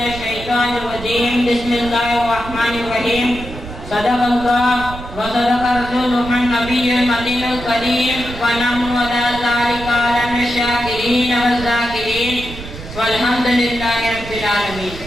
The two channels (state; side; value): noise; right; rumble, 12 dB below the sound